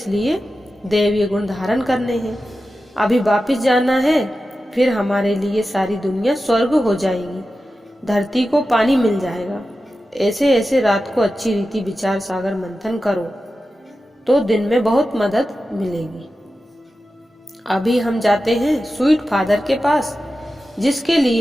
दैवीय गुण धारण करने हैं। अभी वापिस जाना है, फिर हमारे लिए सारी दुनिया स्वर्ग हो जाएगी, धरती को पानी मिल जाएगा। ऐसे ऐसे रात को अच्छी रीति विचार सागर मंथन करो तो दिन में बहुत मदद मिलेगी। अभी हम जाते हैं स्वीट फादर के पास, जिसके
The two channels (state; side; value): normal; both; correlation 0.93